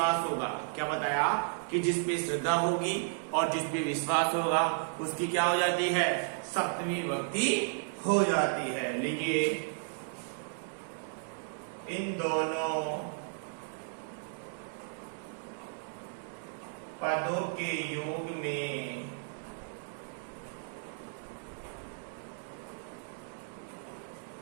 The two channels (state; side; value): silent; left; digital silence